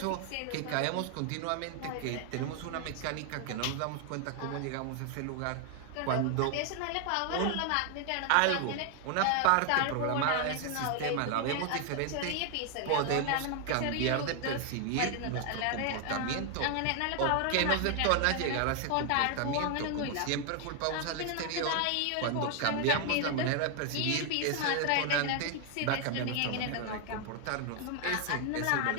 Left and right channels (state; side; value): different; both; correlation 0.00